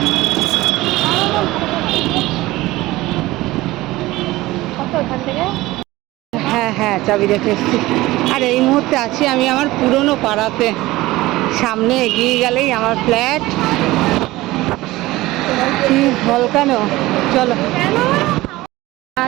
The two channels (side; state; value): left; quieter; 18.5 dB